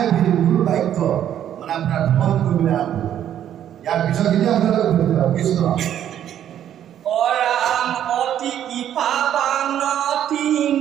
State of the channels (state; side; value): quieter; left; 10.5 dB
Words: গুৰু বাক্য মানে আপোনাৰ ভ্ৰমণ কৰিবলৈ আৰম্ভ। ইয়াৰ পিছতখিনি আপোনালোকে কৃষ্ণ অৰাম অতি কৃপাবান